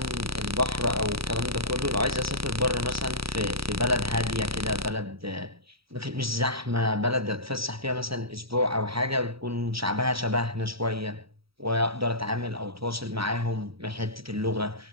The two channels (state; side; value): late; left; 0.76 ms